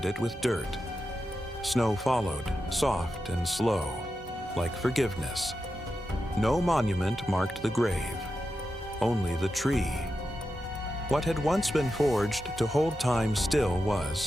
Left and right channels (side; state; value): both; normal; correlation 0.89